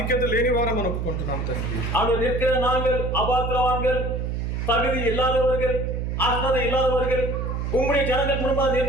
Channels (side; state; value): right; noise; hum, 2 dB below the sound